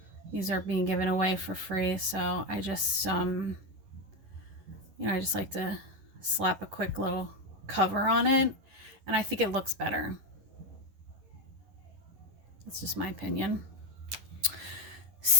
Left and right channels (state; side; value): late; left; 11 ms